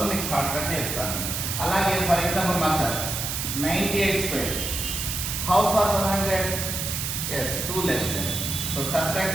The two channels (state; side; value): noise; right; hiss, 3 dB below the sound